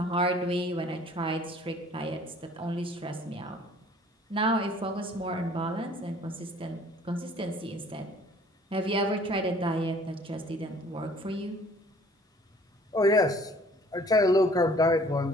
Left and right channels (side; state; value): both; normal; correlation 0.54